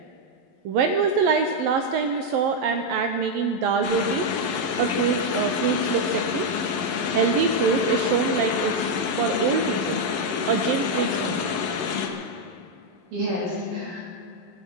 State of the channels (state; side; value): late; left; 11 ms